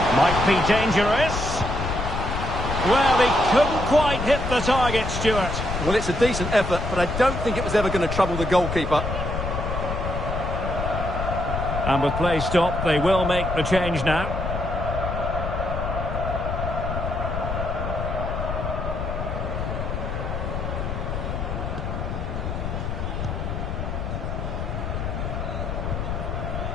Might be dangerous. Well, he couldn't quite hit the target, Stuart. Well, it's a decent effort, but I don't think it was ever going to trouble the goalkeeper. And with play stopped, they will make the change now.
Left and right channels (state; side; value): noise; left; rumble, 3 dB below the sound